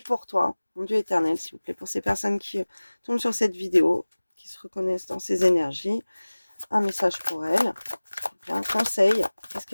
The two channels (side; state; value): both; inverted; correlation -1.00